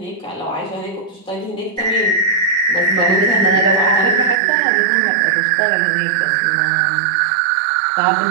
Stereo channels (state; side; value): drops out; left; at 4.4 s